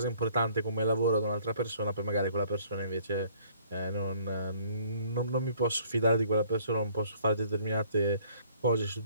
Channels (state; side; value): inverted; both; correlation -0.59